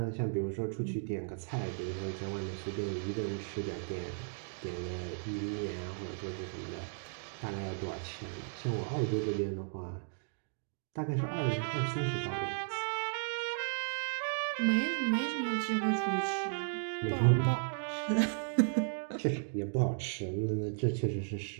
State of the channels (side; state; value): left; silent; digital silence